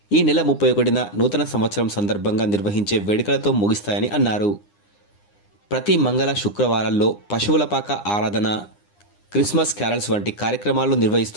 ఈ నెల 31న నూతన సంవత్సరం సందర్భంగా నిర్వహించే వేడుకలతో ముగిస్తాయని అన్నారు. ప్రతి మంగళ శుక్రవారాల్లో పశువుల పాక ఆరాధన, క్రిస్మస్ క్యారల్స్ వంటి కార్యక్రమాలు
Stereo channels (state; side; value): late; right; 9.8 ms